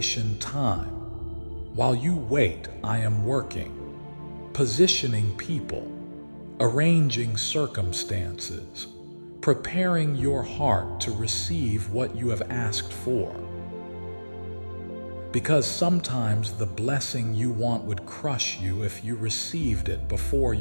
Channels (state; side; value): inverted; both; correlation -1.00